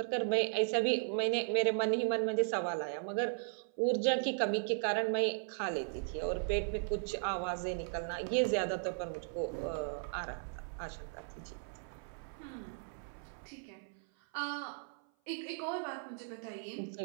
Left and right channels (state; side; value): silent; left; 53 dB below the other